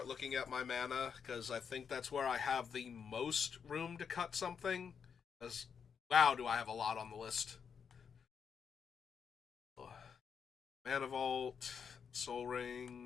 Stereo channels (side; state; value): right; quieter; 6.8 dB